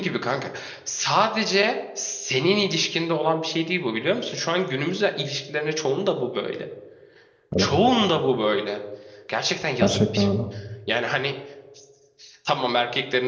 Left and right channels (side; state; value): both; identical; correlation 1.00